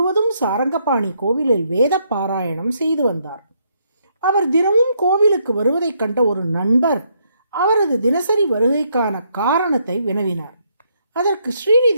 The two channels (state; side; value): inverted; both; correlation -0.73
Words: சாரங்கபாணி கோவிலில் வேத பாராயணம் செய்து வந்தார். அவர் தினமும் கோவிலுக்கு வருவதைக் கண்ட ஒரு நண்பர் அவரது தினசரி வருகைக்கான காரணத்தை வினவினார். அதற்கு